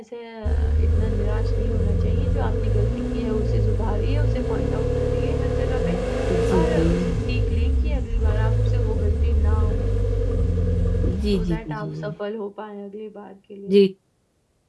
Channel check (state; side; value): identical; both; correlation 1.00